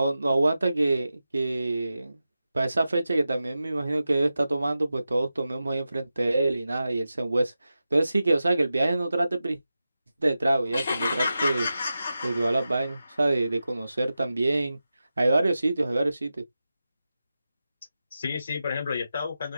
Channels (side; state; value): both; inverted; correlation -0.92